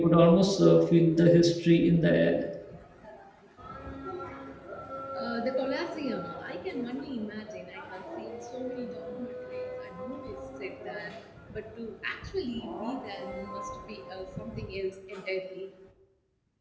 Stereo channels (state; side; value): identical; both; correlation 1.00